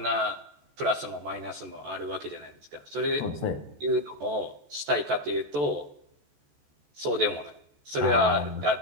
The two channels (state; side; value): late; left; 14 ms